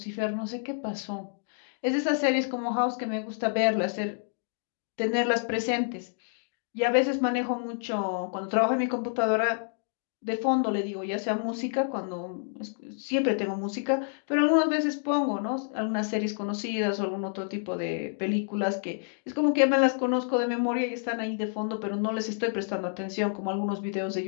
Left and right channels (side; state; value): right; silent; digital silence